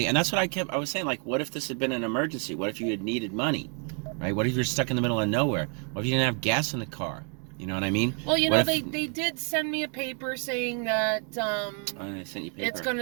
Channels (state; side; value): quieter; left; 39.5 dB